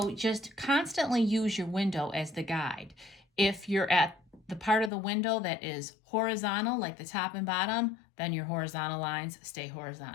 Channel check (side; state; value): right; drops out; at 4.9 s